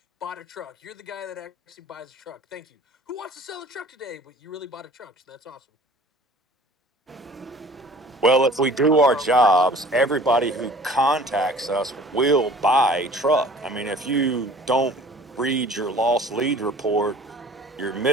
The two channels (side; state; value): both; normal; correlation 0.47